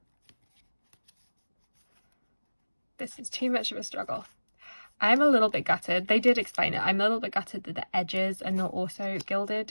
this is too much of a struggle. I'm a little bit gutted. They did explain it. I'm a little bit gutted that the edges are not also gilded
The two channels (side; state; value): both; inverted; correlation -1.00